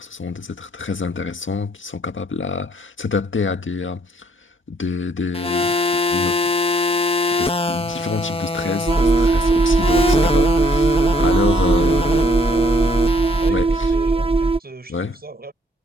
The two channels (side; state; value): both; normal; correlation 0.66